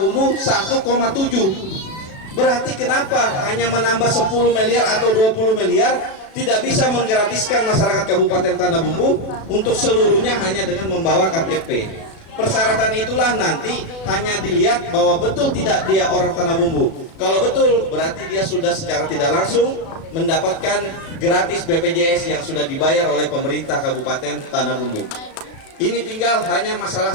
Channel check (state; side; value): late; right; 36 ms